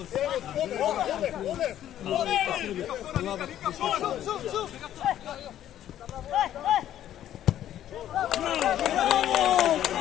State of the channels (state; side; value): quieter; right; 11.6 dB